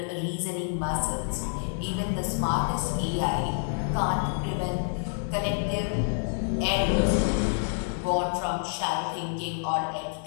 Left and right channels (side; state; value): right; silent; digital silence